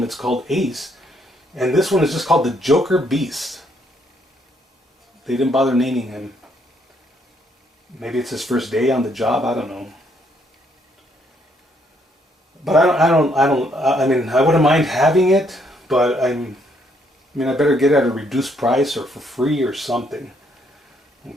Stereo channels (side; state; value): both; normal; correlation 0.71